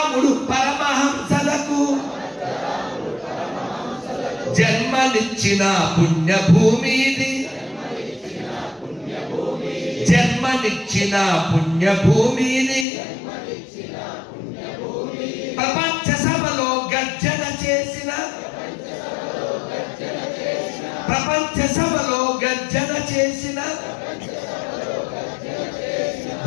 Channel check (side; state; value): right; drops out; at 12.9 s